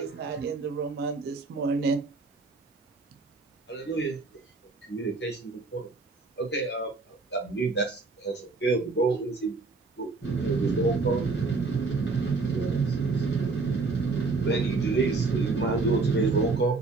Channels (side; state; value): left; quieter; 3.9 dB